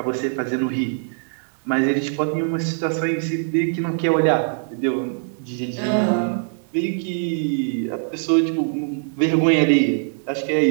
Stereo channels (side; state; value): left; silent; digital silence